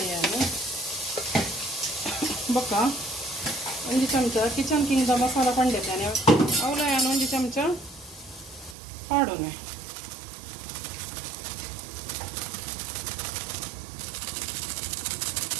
ಬೊಕ್ಕ 1 ಚಮಚ ಕಿಚನ್ ಕಿಂಗ್ದ ಮಸಾಲ ಪಂಡಿದ್ದೇನೆ ಅವಲ ನಾನು 1 ಚಮಚ ಪಾಡೋನೆ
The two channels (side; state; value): left; drops out; at 8.8 s